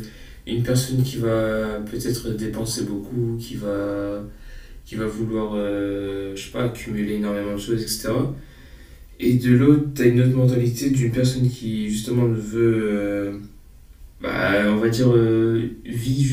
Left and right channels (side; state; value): both; identical; correlation 1.00